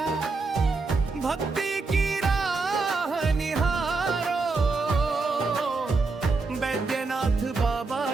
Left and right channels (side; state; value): left; quieter; 3.9 dB